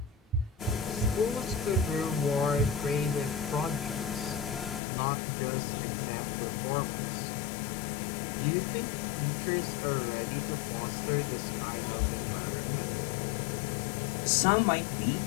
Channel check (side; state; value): right; drops out; at 4.8 s